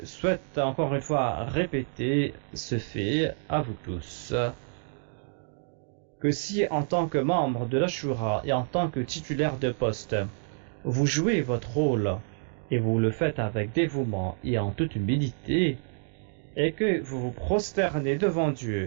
souhaite encore une fois répéter ce fait à vous tous, que si en tant que membre de l'Ashura et en tant que titulaire de poste, vous jouez votre rôle et vous le faites avec dévouement et en toute humilité, et que vous vous prosternez devant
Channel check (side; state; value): left; silent; digital silence